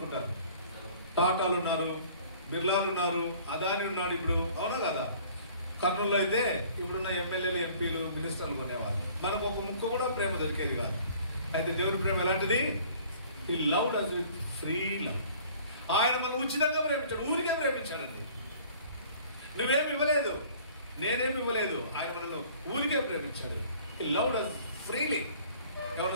టాటాలు ఉన్నారు, బిర్లాలు ఉన్నారు, అదాని ఉన్నాడు ఇప్పుడు, అవునా కదా? కర్నూలులో అయితే ఇప్పుడున్న ఎమ్మెల్యేలు, ఎంపీలు, మినిస్టర్లు కొనేవారు. మనకు ఒక ముక్క కూడా ప్రేమ దొరికేది కాదు. అయితే దేవుని ప్రేమ ఎలాంటిది? He loved us with free love. ఆయన మనం ఉచితంగా ప్రేమించాడు, ఊరికే ప్రేమించాడండి. నువ్వేమి ఇవ్వలేదు, నేనేమి ఇవ్వలేదు, ఆయన మనల్ని ఊరికే ప్రేమించాడు. హి లవ్డ్ us ఫ్రీలీ.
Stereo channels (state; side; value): inverted; both; correlation -0.52